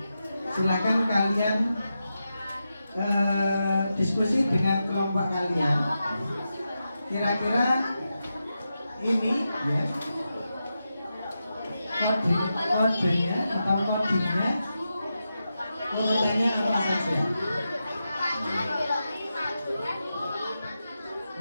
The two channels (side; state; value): both; inverted; correlation -0.89